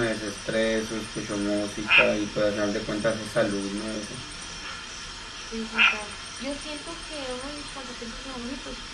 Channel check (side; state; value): both; identical; correlation 1.00